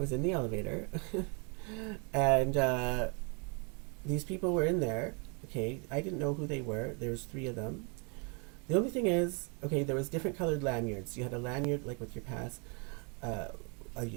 in the elevator, and these people were in there. Okay, I didn't know who they were. There was 3 of them. The only thing is, there was different colored lanyards. You had a lanyard with your pass, a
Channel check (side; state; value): left; quieter; 35.4 dB